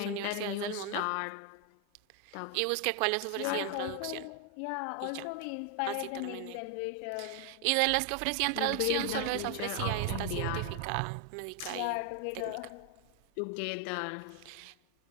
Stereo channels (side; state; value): both; different; correlation 0.00